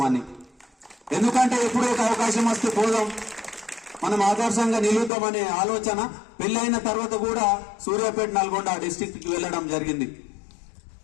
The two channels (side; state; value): right; drops out; at 5.1 s